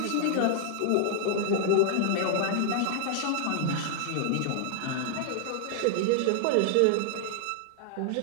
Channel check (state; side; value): different; both; correlation 0.00